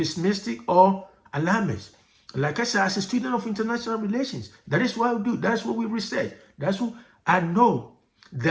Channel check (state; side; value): identical; both; correlation 1.00